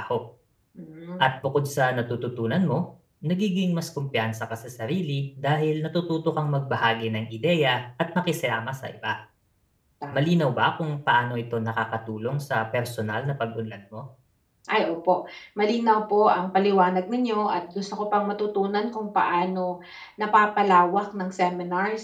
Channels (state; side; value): identical; both; correlation 1.00